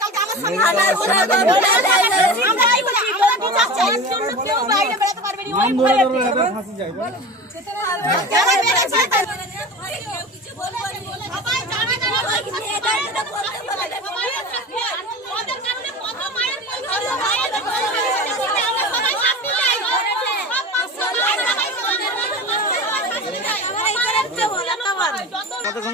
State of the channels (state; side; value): normal; both; correlation 0.31